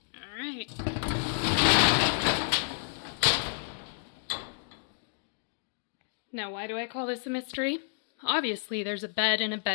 All right. Now, why do I call this a mystery? Obviously, there's a bed and a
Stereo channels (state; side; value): silent; right; digital silence